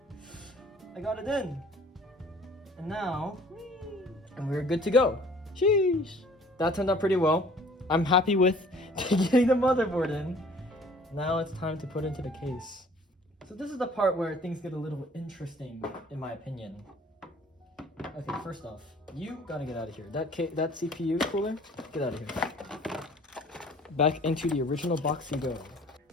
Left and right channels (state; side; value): normal; both; correlation 0.52